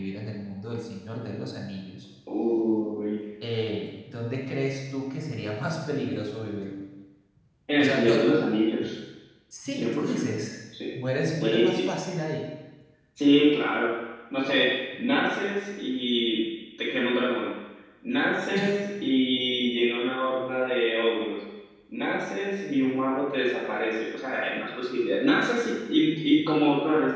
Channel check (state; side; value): identical; both; correlation 1.00